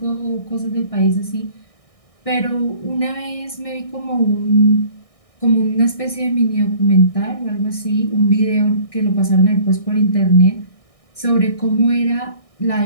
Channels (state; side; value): late; right; 1.6 ms